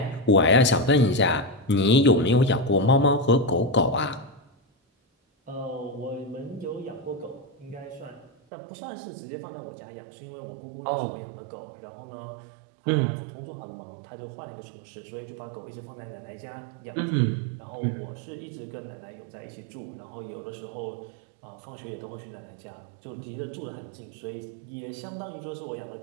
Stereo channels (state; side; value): drops out; left; at 8.3 s